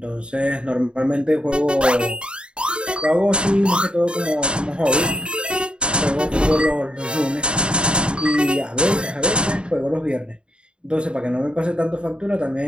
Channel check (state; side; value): late; left; 0.053 ms